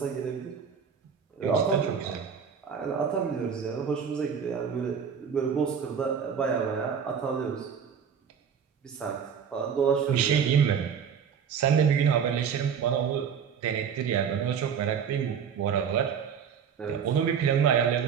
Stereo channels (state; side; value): quieter; left; 7.2 dB